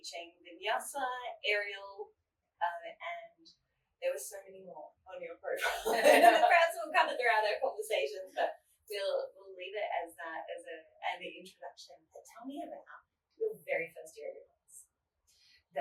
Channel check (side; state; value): both; identical; correlation 1.00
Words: vinyasa, aerial, and there were so many more on your profile. Perhaps we'll cover throughout our conversations, but we'll leave it as that as an introduction. But tell me about your very first yoga class.